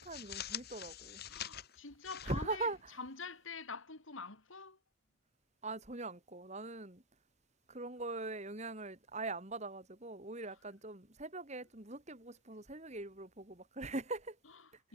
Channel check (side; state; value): both; normal; correlation 0.02